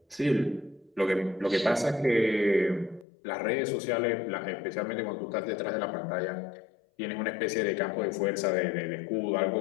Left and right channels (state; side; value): drops out; right; at 3.1 s